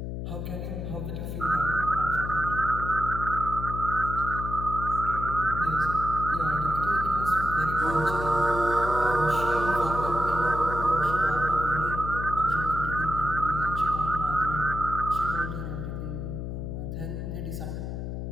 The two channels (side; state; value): left; noise; hum, 5 dB below the sound